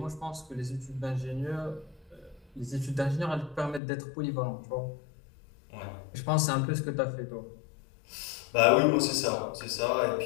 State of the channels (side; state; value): right; drops out; at 3.8 s